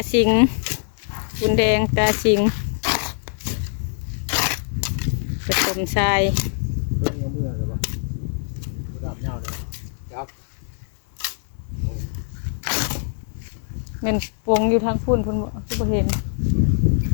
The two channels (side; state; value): right; silent; digital silence